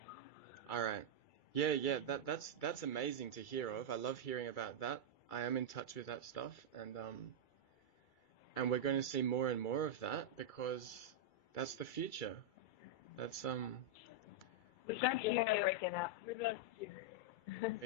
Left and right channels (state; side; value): late; right; 2.3 ms